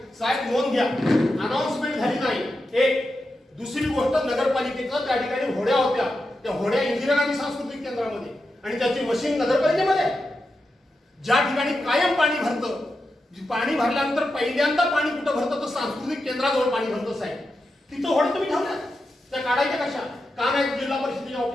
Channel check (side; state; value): both; normal; correlation 0.89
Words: साहेब नोंद घ्या अनाउन्समेंट झाली नाही एक दुसरी गोष्ट नगरपालिकेचं त्या ठिकाणी होड्या होत्या त्या होड्या इंदिरा गांधी सांस्कृतिक केंद्रामध्ये आणि त्याची मशीन नगरपालिकेमध्ये ज्या ठिकाणी कायम पाणी भरतं पाणी भरल्यानंतर पहिल्यांदा पाणी कुठं भरतं तर सांस्कृतिक केंद्राजवळ पाणी भरतं साहेब तिथं होड्या तुम्ही ठेवल्या त्या काढायच्या कशा का नाही जिल्हा परिषदेच्या